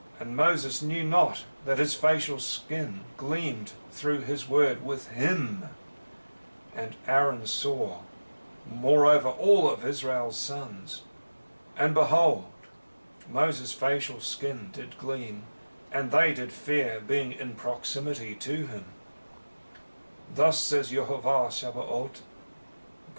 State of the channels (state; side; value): inverted; both; correlation -1.00